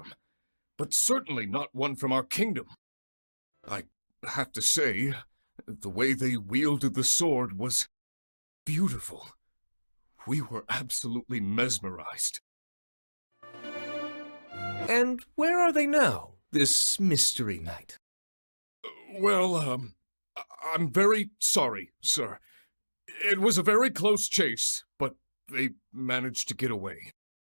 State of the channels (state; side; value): inverted; both; correlation -1.00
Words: but certainly not one from our kingdom. I have to say, the way they wielded the sword was beautiful. We were absolutely mesmerized. And where are they now, this mystery knight? Well, I'm very sorry, sir. It was a very close chase, but they managed to get away.